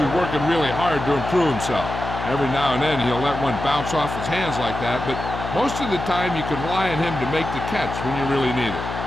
working really hard to improve himself. Every now and then he'll let one bounce off his hands like that, but most of the time you can rely on him to make the catch when you really need it.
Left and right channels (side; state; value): left; noise; hum, 7 dB below the sound